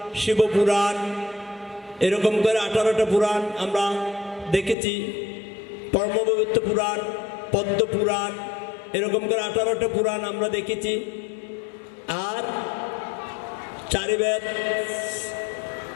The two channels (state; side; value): drops out; right; at 4.8 s